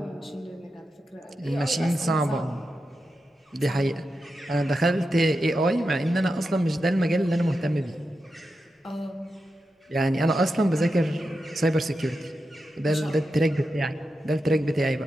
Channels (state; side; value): normal; both; correlation 0.89